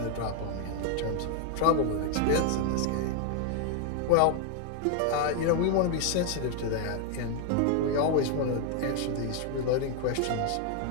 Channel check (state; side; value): different; both; correlation 0.00